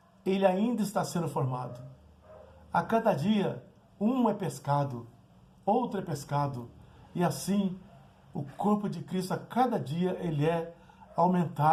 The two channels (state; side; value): identical; both; correlation 1.00